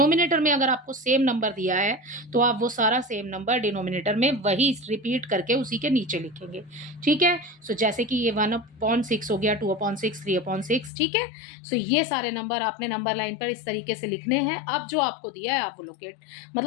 में अगर आपको सेम नंबर दिया है तो आप वो सारा सेम नंबर डिनोमिनेटर में वही रिपीट करके उसी के नीचे लिखेंगे, ठीक है। सो जैसे कि ये 1/6 हो गया, 2/6, 3/6, ठीक है। सो ये सारे नंबर आपने नंबर लाइन पर इस तरीके से लिखने हैं। अब जो आपको दिया है आप वो लोकेट,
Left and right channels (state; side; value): drops out; right; at 10.9 s